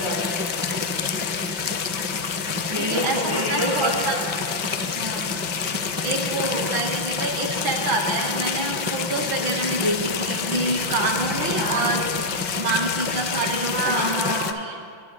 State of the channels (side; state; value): left; late; 5.8 ms